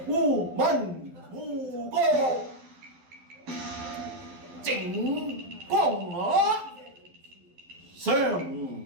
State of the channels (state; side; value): late; left; 12 ms